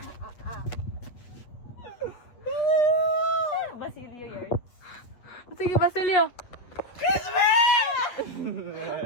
Basilio yun. Sige, Basilio.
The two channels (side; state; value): right; late; 8.3 ms